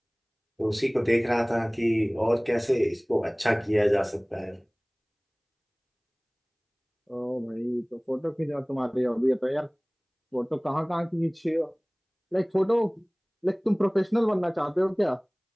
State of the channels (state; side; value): identical; both; correlation 1.00